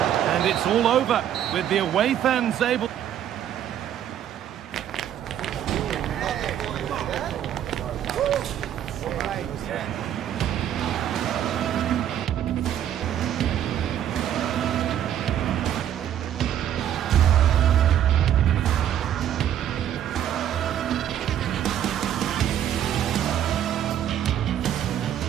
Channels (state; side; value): quieter; left; 10.5 dB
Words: And it's all over with the away fans able...